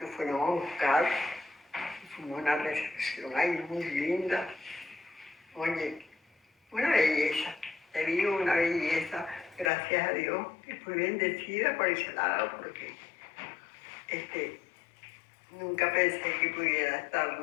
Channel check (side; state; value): right; drops out; at 9.7 s